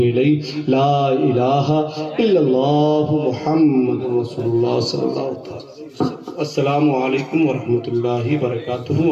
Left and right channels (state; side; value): identical; both; correlation 1.00